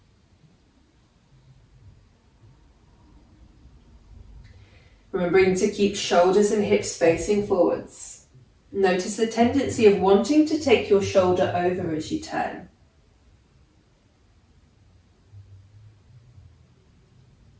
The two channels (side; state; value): both; identical; correlation 1.00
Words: Remembering to keep shoulders and hips facing forwards. Notice the tendency of wanting to take your shoulder over as you turn.